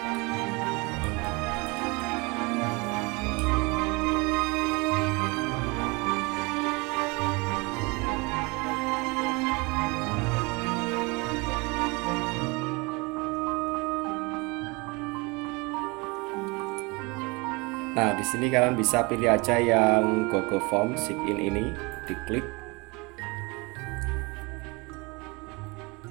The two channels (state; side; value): quieter; left; 27.1 dB